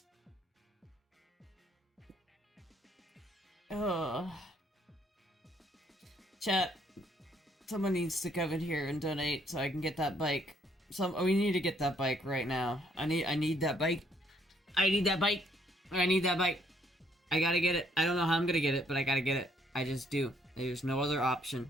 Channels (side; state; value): both; normal; correlation 0.67